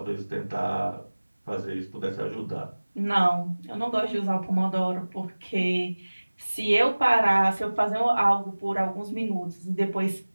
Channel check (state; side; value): inverted; both; correlation -1.00